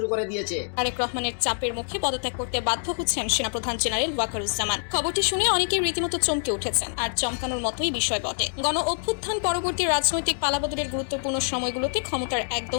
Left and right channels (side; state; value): right; silent; digital silence